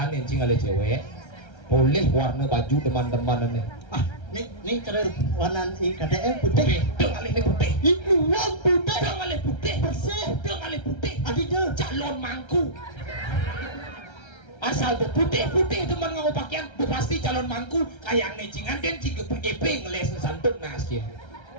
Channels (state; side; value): late; right; 1.3 ms